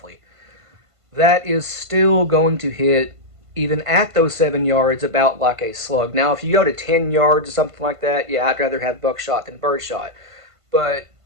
That is still going to hit, even at those 7 yards, about like a slug. Now, if you go to 10 yards or something like that, yeah, I'd rather have buckshot than birdshot. But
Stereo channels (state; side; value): late; left; 1.5 ms